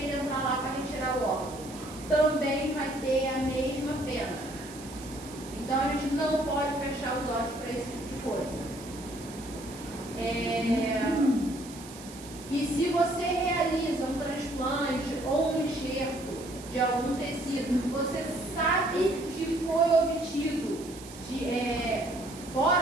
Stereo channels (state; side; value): noise; right; hiss, 17 dB below the sound